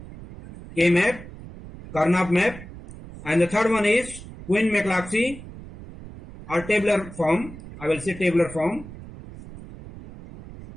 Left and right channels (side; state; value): right; noise; rumble, 15 dB below the sound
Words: Karnaugh map, and the third one is Quine-McClatchy or tabular form. I will say tabular form.